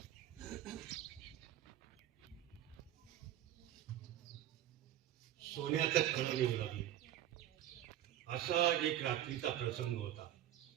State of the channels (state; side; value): quieter; left; 12.4 dB